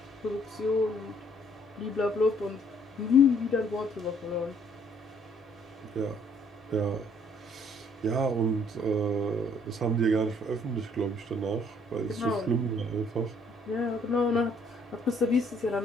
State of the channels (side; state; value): both; normal; correlation 0.64